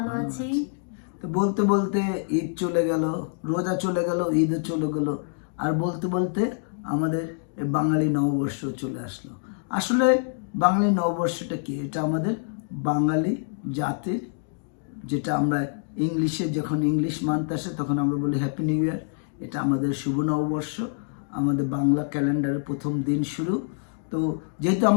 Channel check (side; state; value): right; silent; digital silence